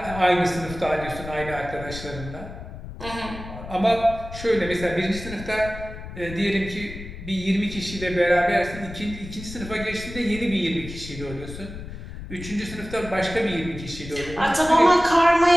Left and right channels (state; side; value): noise; left; rumble, 12 dB below the sound